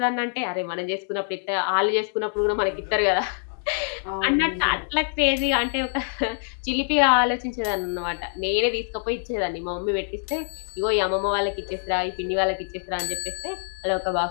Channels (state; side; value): silent; right; digital silence